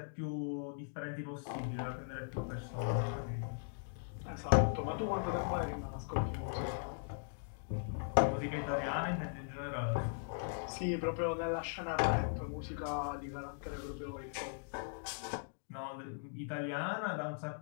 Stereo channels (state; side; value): silent; right; digital silence